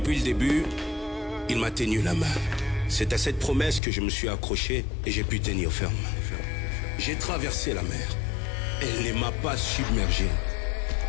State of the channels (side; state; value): right; drops out; at 3.8 s